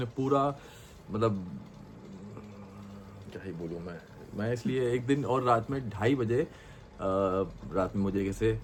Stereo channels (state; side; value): identical; both; correlation 1.00